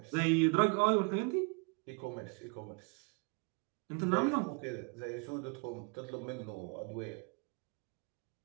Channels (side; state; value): left; quieter; 32.5 dB